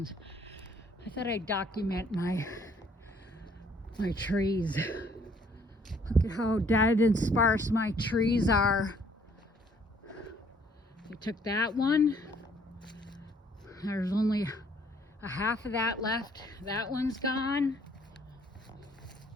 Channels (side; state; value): both; normal; correlation 0.62